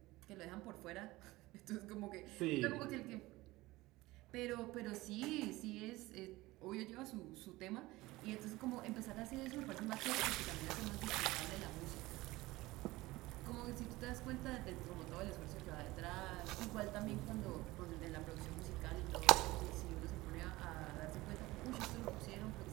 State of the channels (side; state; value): left; quieter; 19.5 dB